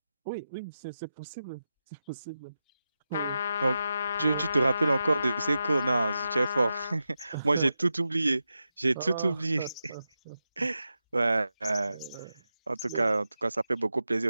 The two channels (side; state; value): both; inverted; correlation -0.90